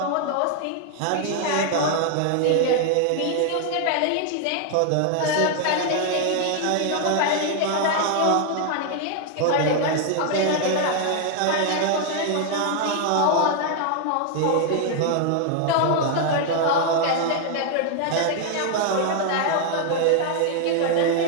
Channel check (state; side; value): different; both; correlation 0.00